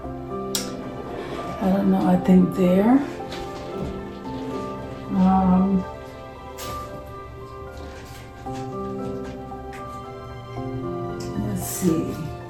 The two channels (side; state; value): both; identical; correlation 1.00